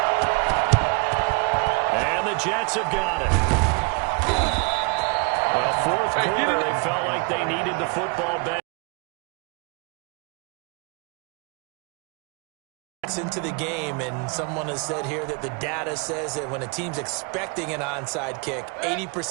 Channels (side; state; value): left; quieter; 30.2 dB